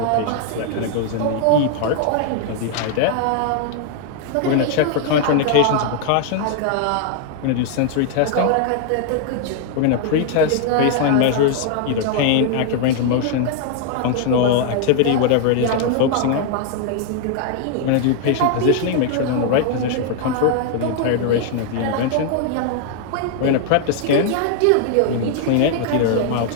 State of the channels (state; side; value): different; both; correlation 0.00